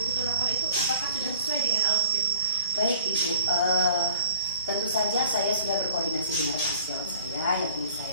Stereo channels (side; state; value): both; inverted; correlation -0.49